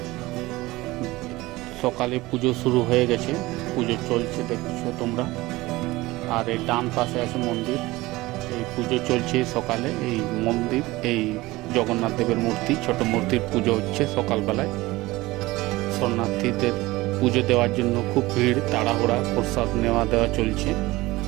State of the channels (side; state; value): left; quieter; 19.7 dB